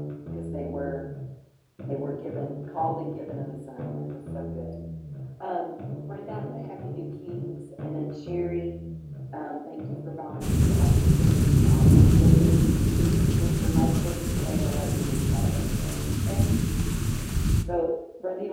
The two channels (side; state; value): both; identical; correlation 1.00